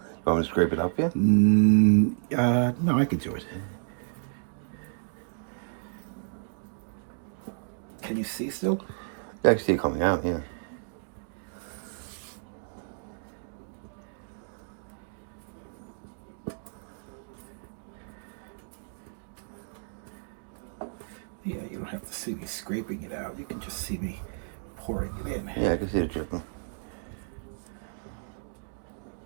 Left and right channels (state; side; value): silent; left; digital silence